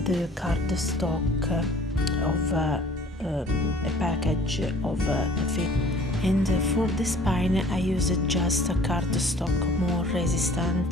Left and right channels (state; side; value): normal; both; correlation 0.52